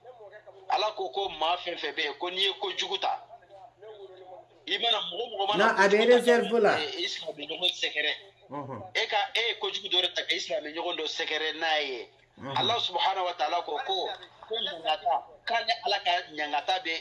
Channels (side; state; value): both; identical; correlation 1.00